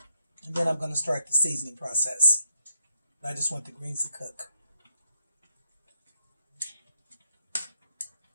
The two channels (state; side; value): inverted; both; correlation -0.79